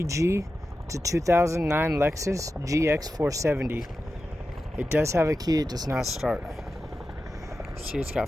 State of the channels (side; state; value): both; normal; correlation 0.92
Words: It's a 2009 Lexus GX470. It does have a key, it does not start. See, it's got